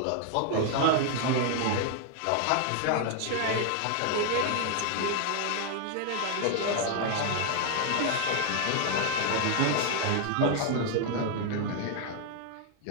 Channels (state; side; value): different; both; correlation 0.00